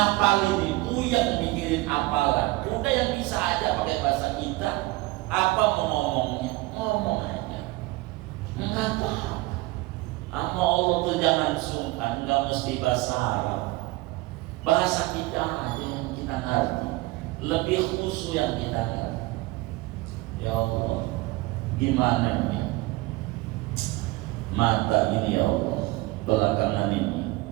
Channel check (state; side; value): quieter; left; 21.0 dB